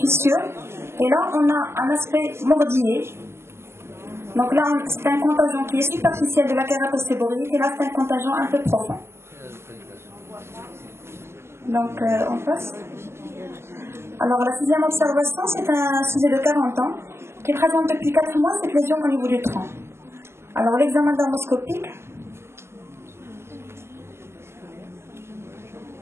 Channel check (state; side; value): late; left; 0.12 ms